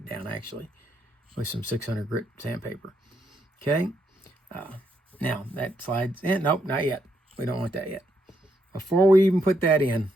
down actually with some 600 grit sandpaper. Okay, now that slides in. Nope, not yet. We don't want that yet. Before we even put that in,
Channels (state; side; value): normal; both; correlation 0.77